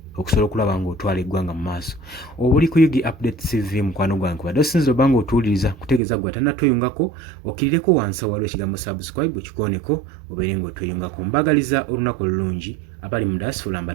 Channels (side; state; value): left; drops out; at 6.0 s